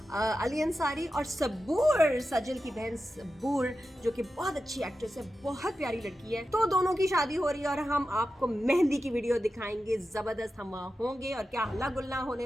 अली अंसारी और सबूर, सजल की बहन सबूर, जो कि बहुत अच्छी एक्ट्रेस है, बहुत प्यारी लड़की है. तो दोनों की शादी हो रही है और हम आपको मेहंदी की वीडियो दिखाएंगे. जबरदस्त हम वहाँ होंगे और क्या हल्ला गुल्ला होने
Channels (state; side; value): normal; both; correlation 0.91